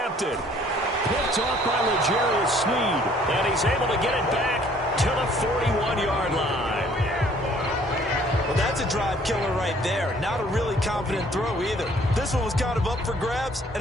Picked off by L'Jarius Sneed. And he's able to get it back to the 41-yard line. Well, that's a drive killer right there. Not a really confident throw either. This one was kind of up for grabs, and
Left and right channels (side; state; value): both; normal; correlation 0.58